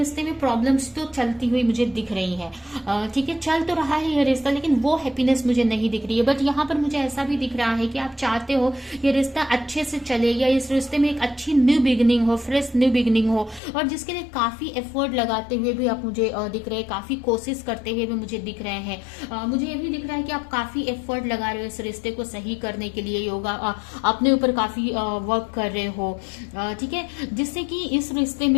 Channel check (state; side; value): drops out; right; at 13.6 s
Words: में प्रॉब्लम्स तो चलती हुई मुझे दिख रही है। ठीक है, चल तो रहा है ये रिश्ता, लेकिन वो हैप्पीनेस मुझे नहीं दिख रही है। बट यहाँ पर मुझे ऐसा भी दिख रहा है कि आप चाहते हो ये रिश्ता अच्छे से चले, या इस रिश्ते में एक अच्छी न्यू बिगिनिंग हो, फ्रेश न्यू बिगिनिंग हो, और जिसके लिए काफी एफर्ट लगाते हुए भी आप मुझे दिख रहे हैं, काफी कोशिश करते हुए भी मुझे दिख रहे हैं। मुझे ये भी दिख रहा है कि आप काफी एफर्ट लगा रहे हो इस रिश्ते को सही करने के लिए, योगा अपने ऊपर काफी वर्क कर रहे हो। ठीक है, जिससे कि इस रिश्ते